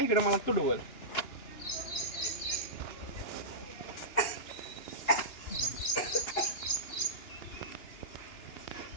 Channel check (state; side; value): late; right; 2.9 ms